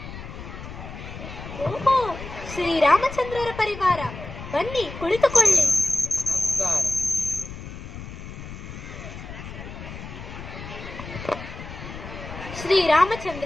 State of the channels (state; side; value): noise; left; rumble, 11 dB below the sound